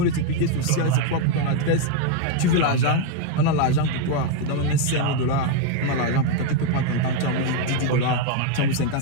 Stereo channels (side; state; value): both; different; correlation 0.01